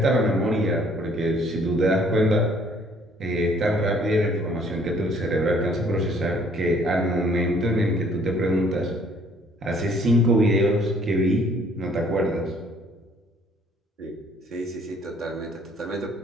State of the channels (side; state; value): both; normal; correlation 0.60